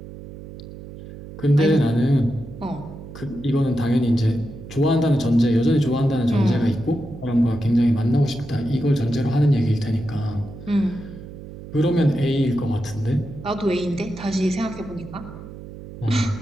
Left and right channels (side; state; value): right; noise; hum, 14 dB below the sound